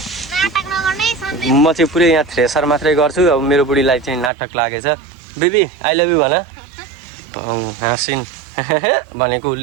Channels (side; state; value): left; drops out; at 4.3 s